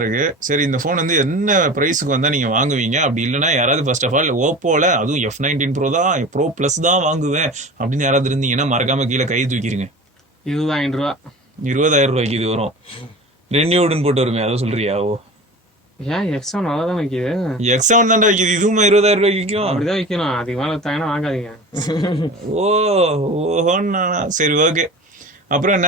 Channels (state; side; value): normal; both; correlation 0.35